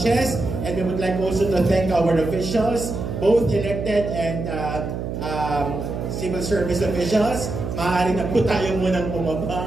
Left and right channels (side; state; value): right; noise; hum, 5 dB below the sound